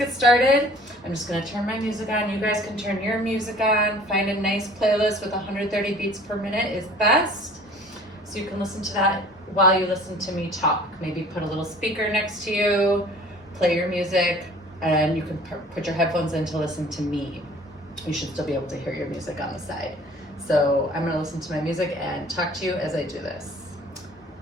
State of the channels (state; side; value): normal; both; correlation 0.49